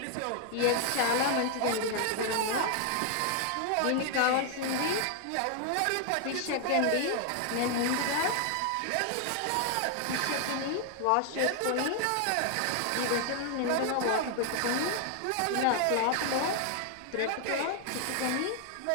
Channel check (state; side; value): different; both; correlation 0.00